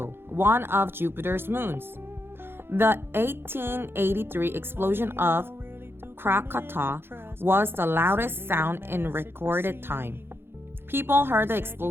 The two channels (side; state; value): left; late; 0.11 ms